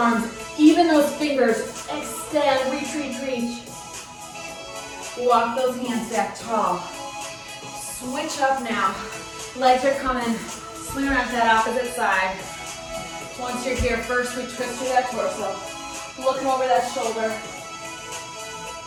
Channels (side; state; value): both; identical; correlation 1.00